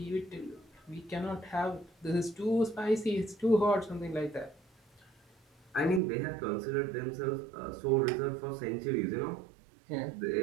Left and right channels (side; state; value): left; drops out; at 6.0 s